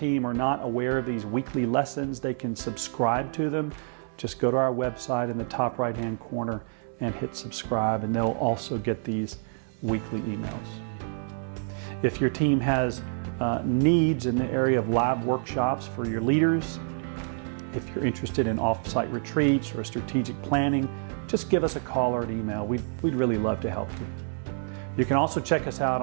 are not aware of these weekly lessons, they can subscribe to them. Just go to our website in the top right-hand corner and hit subscribe, and they'll also get these weekly emails. If your team has needs in the area of live workshops for your leaders, if you're interested in off-site retreats or strategic planning, just give us a call or an email. We'd really love to help you. You can also check us out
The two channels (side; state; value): left; silent; 60 dB below the other